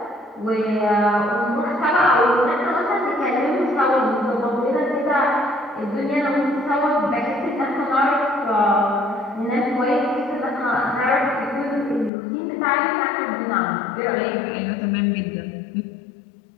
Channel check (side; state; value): right; drops out; at 12.1 s